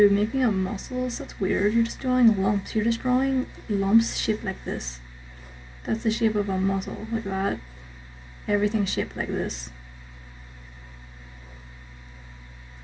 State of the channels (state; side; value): identical; both; correlation 1.00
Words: Making up muscles, that's weird. You're just drawing lumps. You're just drawing lumps shaped like this. That's the shape of a muscle, like that. Everything's shaped like this.